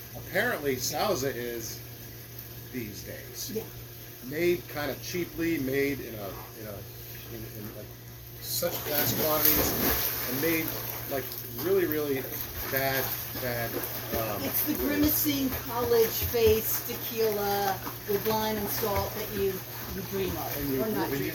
Apparently, Sauza is these days made kind of cheaply, made in like such vast quantities, and made like really, really bad. It's the grimacing college face tequila with lime and salt that you dream of, And you, or not and dream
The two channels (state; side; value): identical; both; correlation 1.00